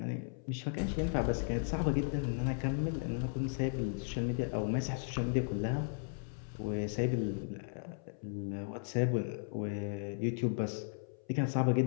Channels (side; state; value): right; silent; 54 dB below the other